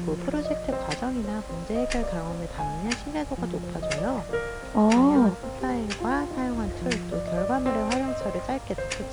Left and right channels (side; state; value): both; identical; correlation 1.00